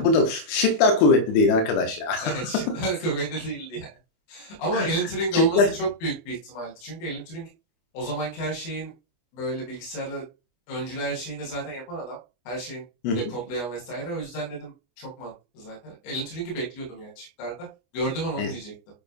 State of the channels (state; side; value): late; right; 25 ms